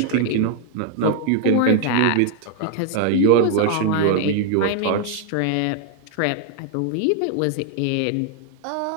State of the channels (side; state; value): both; different; correlation 0.00